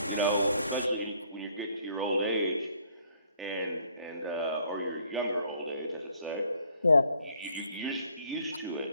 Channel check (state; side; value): inverted; both; correlation -0.64